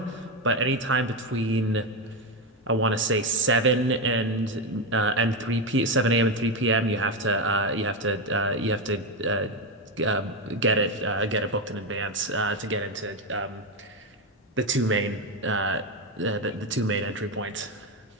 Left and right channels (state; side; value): normal; both; correlation 0.11